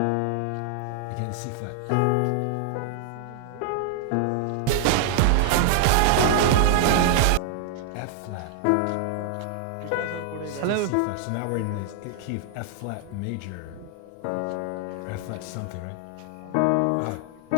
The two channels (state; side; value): different; both; correlation 0.00